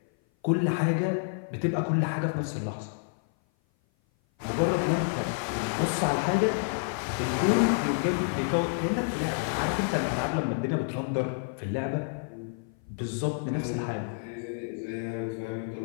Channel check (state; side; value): silent; right; 56 dB below the other